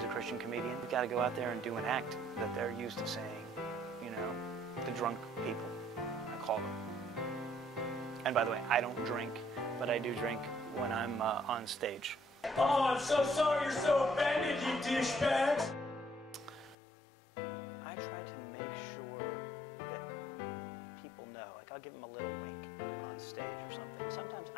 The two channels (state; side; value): drops out; right; at 16.8 s